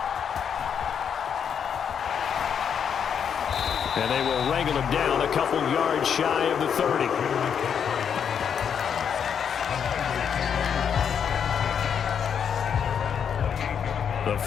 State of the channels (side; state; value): right; quieter; 7.6 dB